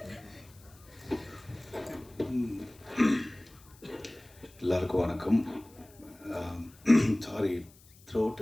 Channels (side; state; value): left; noise; hiss, 26 dB below the sound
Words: எல்லாருக்கும் வணக்கம். சாரி, த்ரோட்